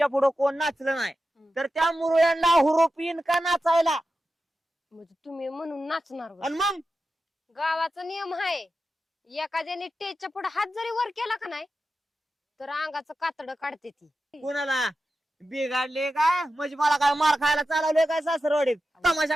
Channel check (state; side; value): normal; both; correlation 0.92